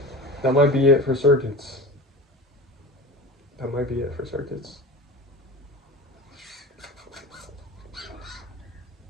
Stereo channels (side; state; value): both; normal; correlation 0.33